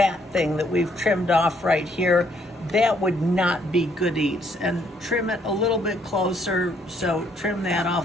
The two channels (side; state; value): both; normal; correlation 0.68